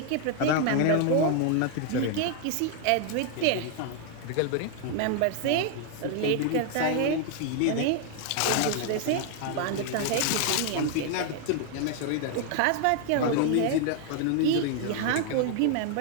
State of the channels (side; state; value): both; different; correlation 0.00